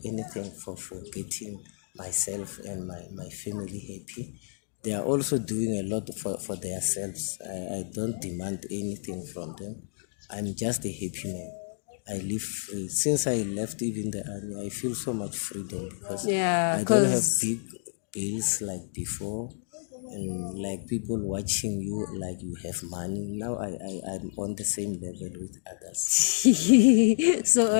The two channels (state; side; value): silent; right; digital silence